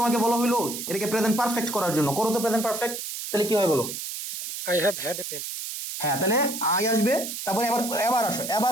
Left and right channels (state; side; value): noise; right; hiss, 7 dB below the sound